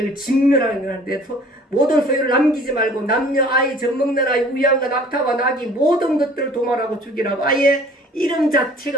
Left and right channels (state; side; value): normal; both; correlation 0.51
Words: 진멸하는 건데 모든 소유를 남기지 말고 남녀 아이 젖먹는 아이 우양과 낙타와 나귀 모든 것들을 도말하고 죽이라고 아예 이름